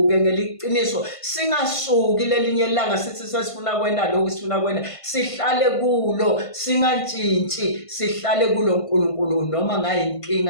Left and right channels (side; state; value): right; late; 1.5 ms